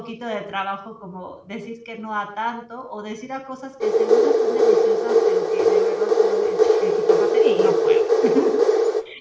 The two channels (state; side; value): identical; both; correlation 1.00